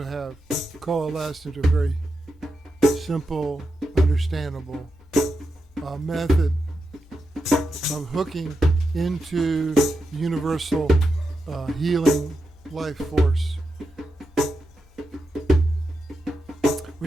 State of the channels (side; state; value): both; normal; correlation 0.87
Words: have coalesced into a very simple, understandable method of hooking into universal healing life force,